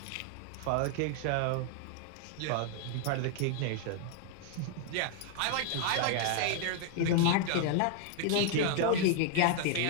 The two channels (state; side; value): different; both; correlation 0.00